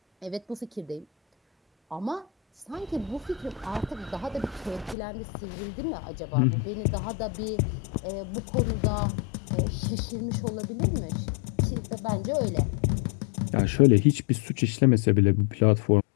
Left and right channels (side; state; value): right; drops out; at 5.0 s